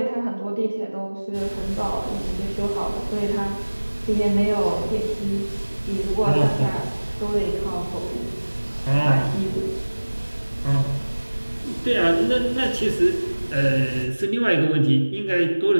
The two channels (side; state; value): both; inverted; correlation -1.00